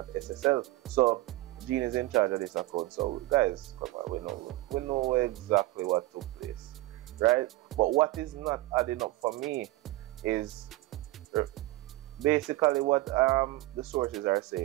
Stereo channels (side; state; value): left; quieter; 18.3 dB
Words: SSL. So Jean is in charge of this account. So guys, come on, we know exactly what took place, right? But what is not adding up for me is basically what the sources are